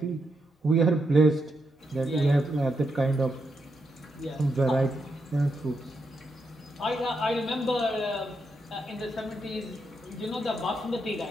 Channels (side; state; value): both; normal; correlation 0.82